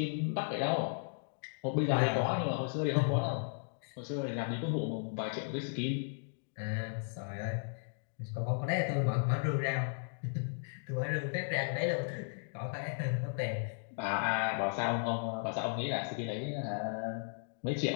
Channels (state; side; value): silent; right; digital silence